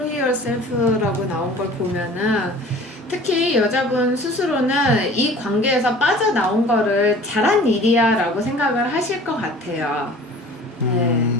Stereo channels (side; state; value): both; normal; correlation 0.46